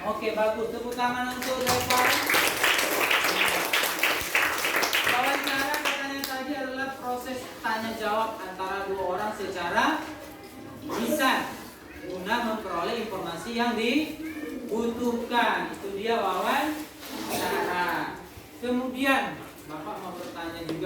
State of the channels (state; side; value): identical; both; correlation 1.00